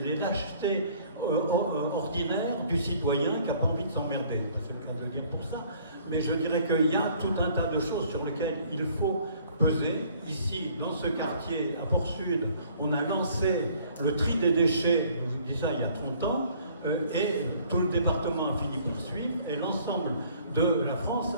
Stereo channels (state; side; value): inverted; both; correlation -0.58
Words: les lâchetés ordinaires du citoyen qui n'a pas envie de s'emmerder. C'est le cas de le dire pour ça. Mais je dirais qu'il y a tout un tas de choses sur lesquelles il faut peser. Ici, dans ce quartier, à Port-Sud, on a lancé le tri des déchets, je vous dis ça il y a 30 ans, et tout le département a fini par suivre, et l'ensemble de la France